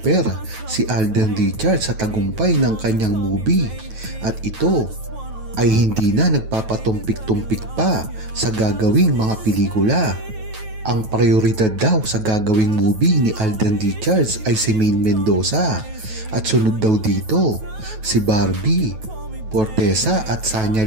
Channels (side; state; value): left; late; 9.2 ms